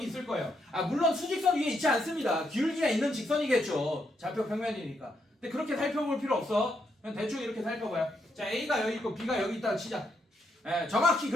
있을 거예요. 아, 물론 수직선 위에 있지 않습니다. 기울기가 있는 직선이겠죠. 좌표 평면이니까. 근데 그렇게 살펴볼 필요 없어. 그냥 대충 이렇게 살펴봐요. 자, A가 여기 있고 B가 여기 있다고 치자. 정확히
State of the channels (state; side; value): normal; both; correlation 0.78